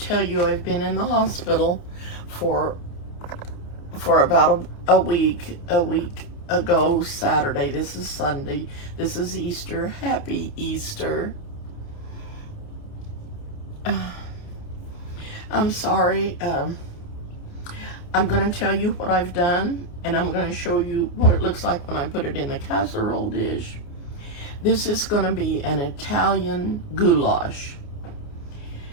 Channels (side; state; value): right; late; 29 ms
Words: you I've been in the hospital for about a week ago Saturday. This is Sunday. This is Easter. Happy Easter. I'm sorry. I'm going to tell you what I've done, and I'm going to show you what it looks like when I put it in the casserole dish. This is going to be an Italian goulash.